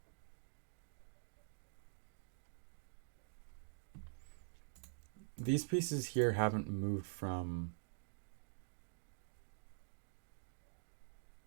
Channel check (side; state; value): left; silent; digital silence